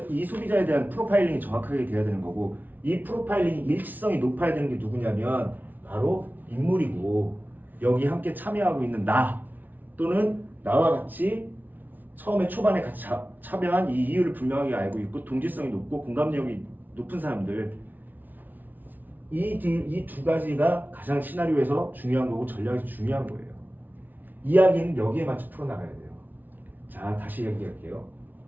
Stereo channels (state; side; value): late; left; 0.084 ms